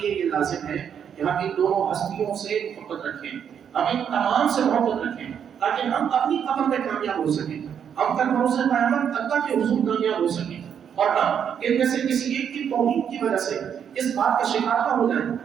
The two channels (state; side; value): quieter; left; 8.2 dB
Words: یہ لازم ہے کہ ہم ان دونوں ہستیوں سے محبت رکھیں، ہم ان تمام سے محبت رکھیں، تاکہ ہم اپنی قبر میں کامیاب ہو سکیں، ہم کل بروز قیامت اللہ کے حضور کامیاب ہو سکیں، اور ہم ان میں سے کسی ایک کی توہین کی وجہ سے اس بات کا شکار نہ ہو جائیں